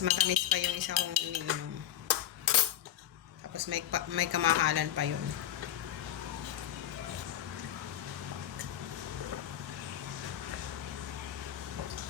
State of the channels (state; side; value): quieter; right; 11.3 dB